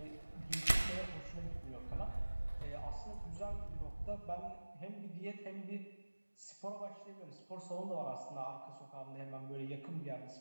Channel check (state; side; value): inverted; both; correlation -1.00